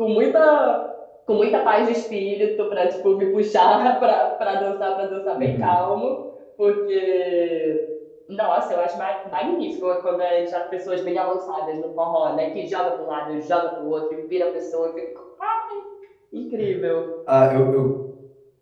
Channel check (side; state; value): both; identical; correlation 1.00